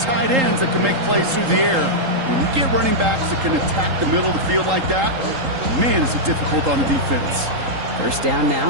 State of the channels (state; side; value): late; left; 3.8 ms